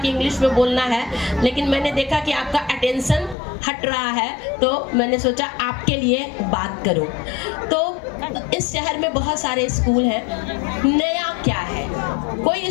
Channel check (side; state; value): right; drops out; at 3.4 s